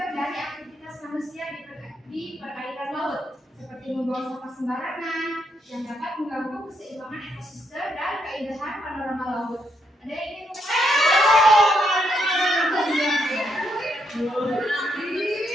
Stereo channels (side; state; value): both; normal; correlation 0.77